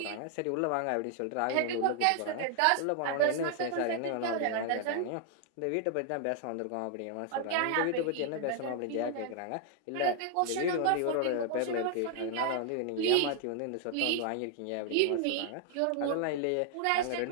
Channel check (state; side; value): different; both; correlation 0.00